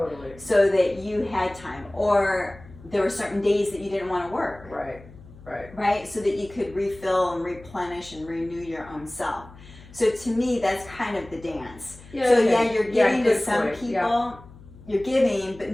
So that you had time. Or there were certain days that you didn't want to work. Right. Right. Right? So that you could refill and replenish and renew your own self. So to me, that's kind of the dance. Yeah, so okay. yeah, you're giving to good some point. people. Yeah. You're giving, but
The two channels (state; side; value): noise; left; hum, 20 dB below the sound